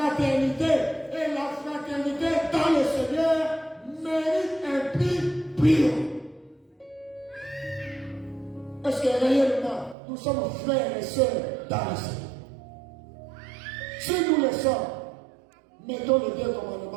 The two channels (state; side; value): drops out; left; at 10.0 s